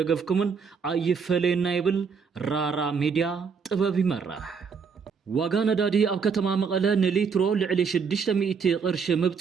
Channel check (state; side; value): quieter; left; 5.9 dB